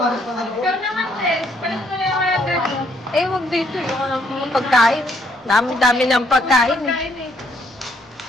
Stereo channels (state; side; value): normal; both; correlation 0.69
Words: pa nga. Ikaw naman, Tess. Palit mo na yung mga dress. Eh, wag dito yung ano, mga pagkain. Dami-dami ng pagkain eh. Kain eh.